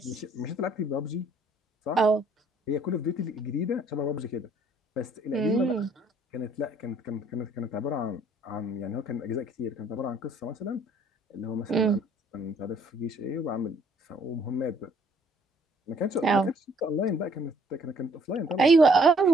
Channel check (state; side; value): normal; both; correlation 0.62